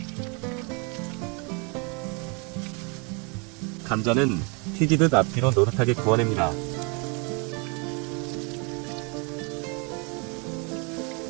감자는 튀기듯 앞뒤로 노릇하게 구워냅니다.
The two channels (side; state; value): left; quieter; 33.2 dB